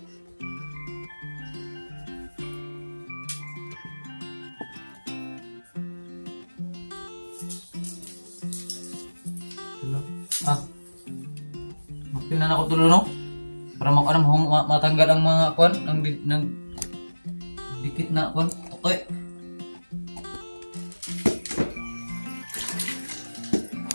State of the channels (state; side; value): inverted; both; correlation -1.00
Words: Magpinan ako tulo no? Para matanggal ang mga kwan, ang dikit na kwan. Okay.